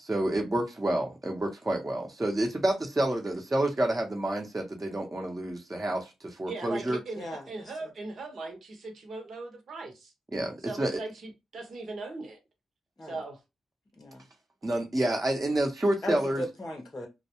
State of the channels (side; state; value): both; normal; correlation 0.92